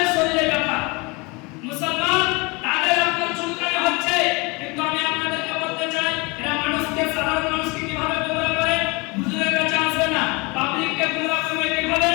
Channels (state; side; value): quieter; right; 27.2 dB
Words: শরীরে ব্যথা, মুসলমান তাদের আপনার চুলকানি হচ্ছে, কিন্তু আমি আপনাদেরকে বলতে চাই এরা মানুষকে সাধারণ মানুষকে কিভাবে গোমরাহ করে, হুজুরের কাছে আসবে না, পাবলিককে গোমরাহ করবে কিভাবে?